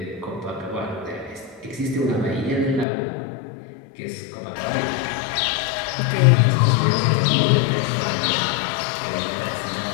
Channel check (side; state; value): right; drops out; at 2.9 s